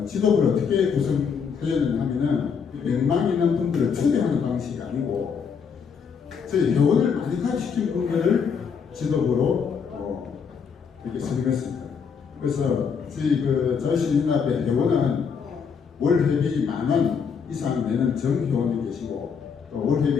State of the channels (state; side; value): quieter; right; 6.3 dB